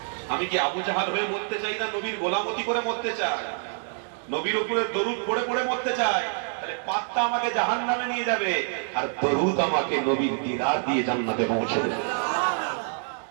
আমি কি আবু জাহাল হয়ে মরতে চাই না নবীর গোলামতি করে মরতে চাই? নবীর উপরে দরুদ পড়ে পড়ে মরতে চাই। তাহলে পাত্তা আমাকে জাহান্নামে নিয়ে যাবে, আর দরুদ আমাকে নবীর দিদার দিয়ে জান্নাতে পৌঁছে দেবে।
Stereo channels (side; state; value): left; silent; 61 dB below the other